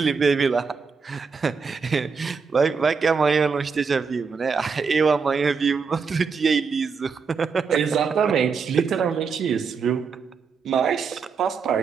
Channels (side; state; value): left; quieter; 5.4 dB